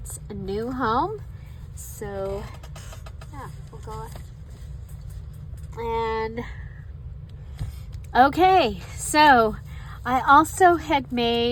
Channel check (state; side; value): identical; both; correlation 1.00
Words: new home. So yeah, we'll go and okay, so I also had